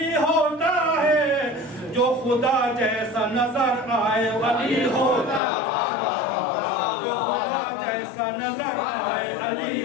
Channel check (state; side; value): drops out; right; at 5.4 s